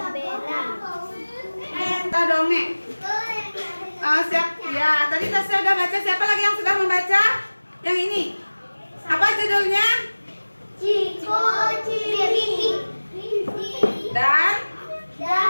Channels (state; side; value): inverted; both; correlation -1.00